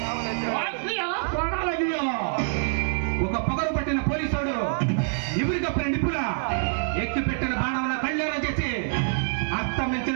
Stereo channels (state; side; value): silent; left; 57 dB below the other